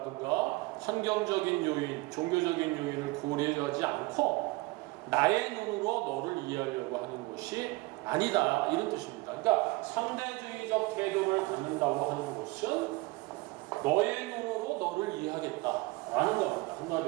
환경적인 요인, 종교적인 요인을 고려하지 않고 나의 눈으로 너를 이해하려고 하는 것이 아니다. 이런 뜻입니다. 그러니까 상대주의적 태도를 갖는다고 하는 것은 너의 눈으로 너를 이해하겠다라는 겁니다.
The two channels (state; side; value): quieter; left; 22.4 dB